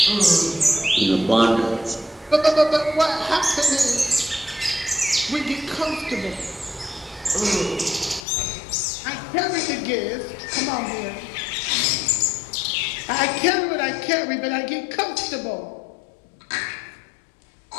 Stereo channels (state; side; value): drops out; right; at 8.2 s